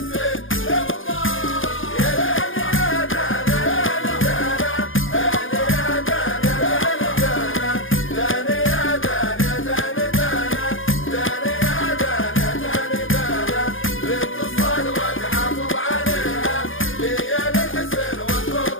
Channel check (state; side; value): late; right; 0.58 ms